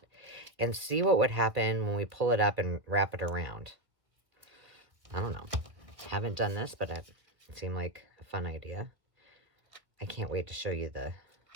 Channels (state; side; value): late; left; 1.6 ms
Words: and see what would happen when we pull it up and wrap it around. I don't know. Haven't done this, but it seemed like a fun idea. I can't wait to show you the...